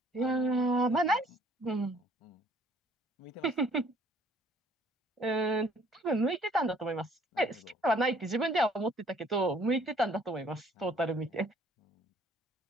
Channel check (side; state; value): both; normal; correlation 0.60